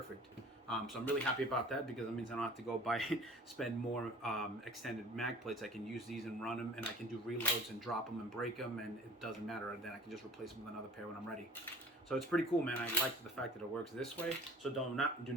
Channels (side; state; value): both; normal; correlation 0.46